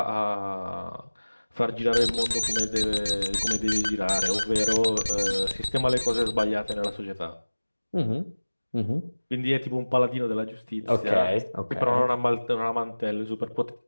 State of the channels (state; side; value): inverted; both; correlation -1.00